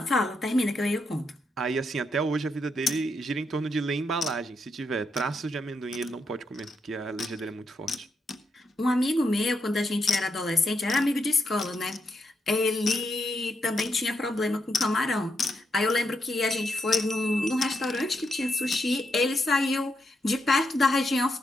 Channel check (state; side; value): normal; both; correlation 0.81